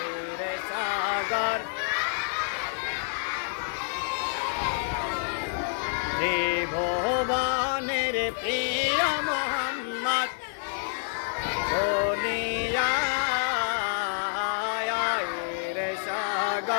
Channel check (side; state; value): right; silent; digital silence